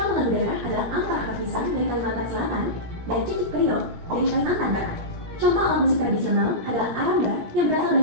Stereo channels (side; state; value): left; late; 17 ms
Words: lagu daerah adalah Ampar Hapisan dari Kalimantan Selatan dan Cicik Priok dari Kalimantan Barat. Contoh alat musik tradisional adalah aramba yang berasal